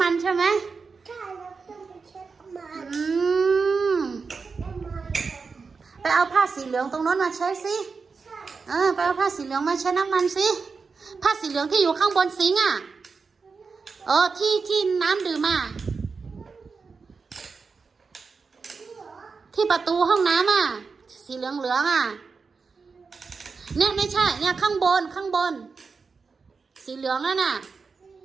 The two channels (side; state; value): left; quieter; 4.9 dB